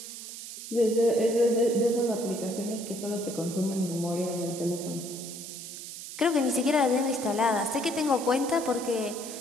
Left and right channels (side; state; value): right; noise; hiss, 10 dB below the sound